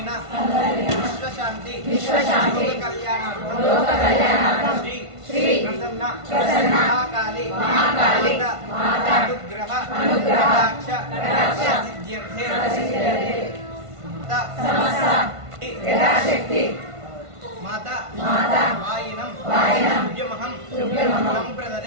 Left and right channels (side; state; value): left; late; 1.5 ms